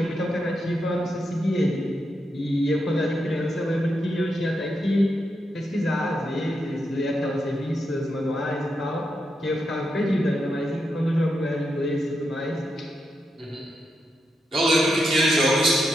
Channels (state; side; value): normal; both; correlation 0.84